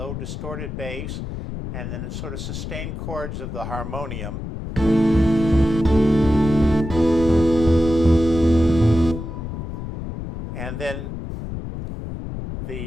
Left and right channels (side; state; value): left; noise; rumble, 7 dB below the sound